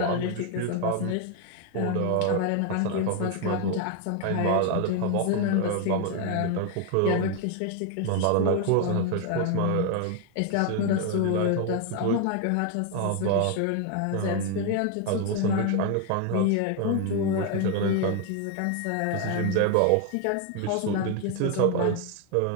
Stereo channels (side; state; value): both; different; correlation 0.01